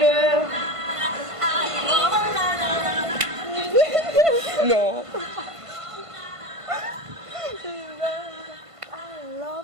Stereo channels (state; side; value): late; left; 1.5 ms